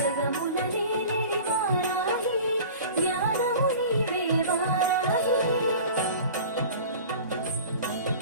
నేలిడి వారాహి, జ్ఞానము నీవే వారాహి.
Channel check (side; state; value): both; inverted; correlation -0.40